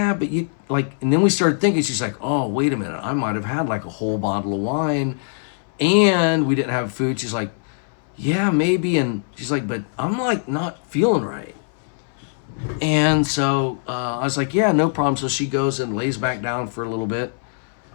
but you, like, and then we started thinking, she's like, oh, wait a minute. I might have had, like, a whole bottle of wine, and we didn't have food. She's like, yeah, maybe. And she's like, but I'm, like, not feeling right. And so I was like, yeah, no problem. So she goes and lays back down for a little bit.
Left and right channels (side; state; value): right; silent; 63 dB below the other